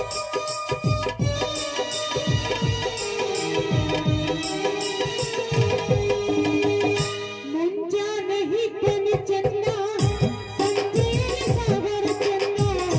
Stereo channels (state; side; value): identical; both; correlation 1.00